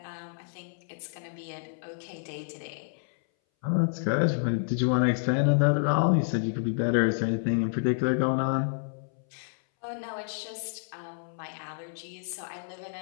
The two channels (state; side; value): silent; right; 58 dB below the other